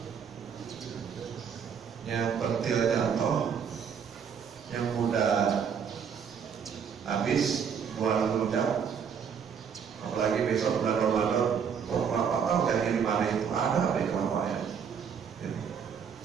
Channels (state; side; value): quieter; left; 7.1 dB